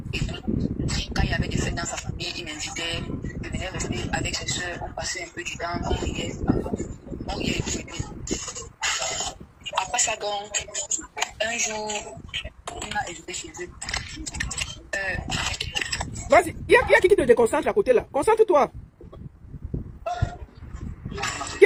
et tout. Quand il y avait des fêtes dans sa famille, il m'invitait. Je venais rester avec ses soeurs. On passait un peu du temps. On riait et tout. Après ça, donc, un jour, il m'a invité chez eux. Vas-y, il y a qui te déconcentre à côté là. Concentre-toi. Qui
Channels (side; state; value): both; identical; correlation 1.00